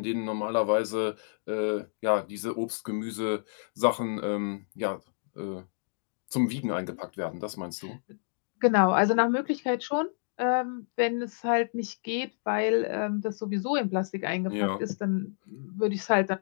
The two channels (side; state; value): right; silent; digital silence